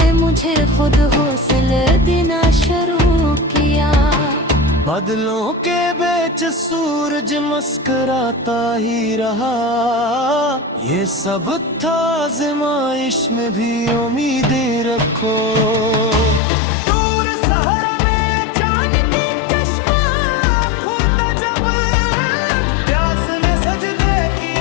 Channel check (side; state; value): right; drops out; at 16.4 s